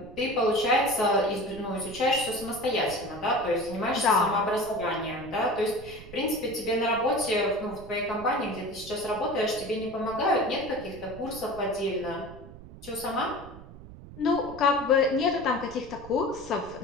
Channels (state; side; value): noise; right; rumble, 16 dB below the sound